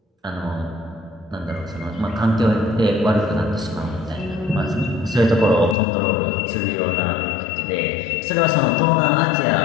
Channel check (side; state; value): right; drops out; at 5.8 s